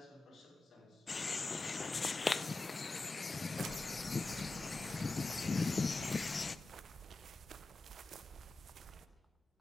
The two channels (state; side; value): quieter; right; 3.3 dB